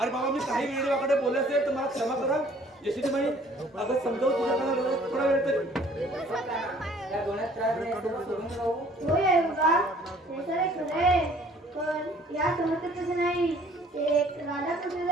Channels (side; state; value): both; normal; correlation 0.56